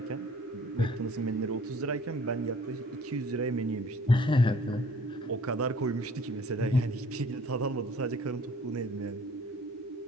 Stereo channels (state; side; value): normal; both; correlation 0.53